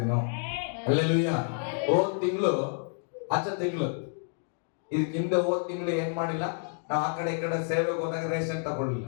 ಅಲ್ಲೆಲ್ಲೂಯ್ಯ. ಹೋದ್ ತಿಂಗಳು ಇದಕ್ಕೆ ಹಿಂದೆ ಹೋದ್ ತಿಂಗಳು ಏನ್ ಮಾಡಿಲ್ಲ, ನಾವು ಆ ಕಡೆ ಈ ಕಡೆ ಸೇವೆಗೆ ಹೋದಾಗ ರೇಷನ್ ತಗೊಳ್ಳಿಲ್ಲ.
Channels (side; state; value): right; silent; 58 dB below the other